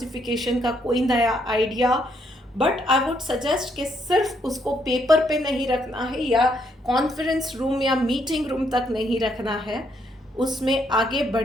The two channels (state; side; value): normal; both; correlation 0.73